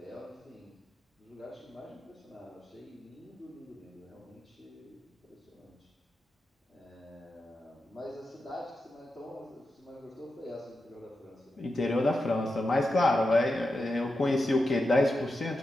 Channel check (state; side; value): normal; both; correlation 0.89